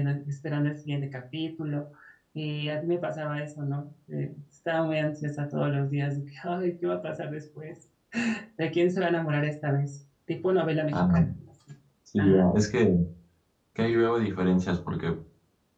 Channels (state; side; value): identical; both; correlation 1.00